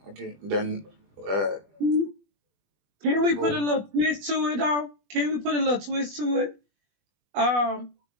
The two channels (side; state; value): left; late; 20 ms